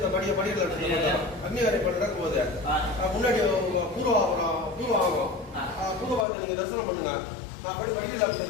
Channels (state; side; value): drops out; right; at 6.2 s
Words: படிக்கல அக்னிகாரியம் நடக்கும் போது முன்னாடி பூர்வாகம் பூர்வாகத்தை நீங்க தரிசனம் பண்ணுங்க. நான் படிக்கல